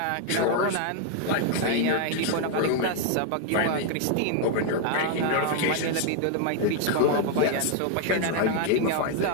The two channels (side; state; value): both; different; correlation 0.00